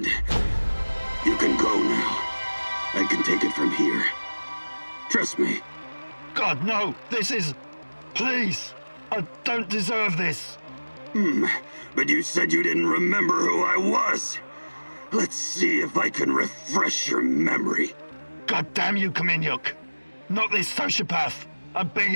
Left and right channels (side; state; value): both; inverted; correlation -1.00